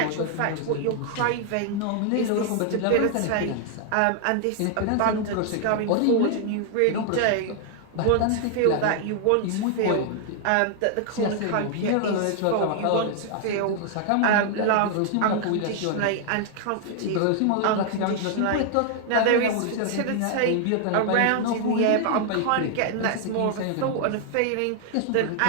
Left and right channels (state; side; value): different; both; correlation 0.00